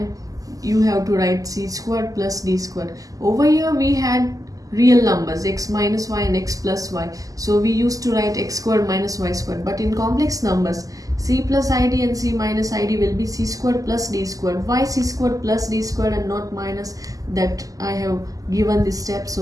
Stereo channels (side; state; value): left; late; 0.17 ms